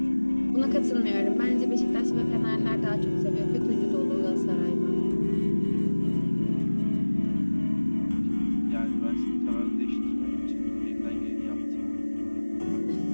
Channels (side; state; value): both; inverted; correlation -1.00